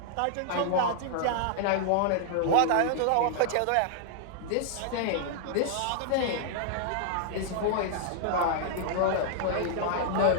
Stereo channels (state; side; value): different; both; correlation -0.01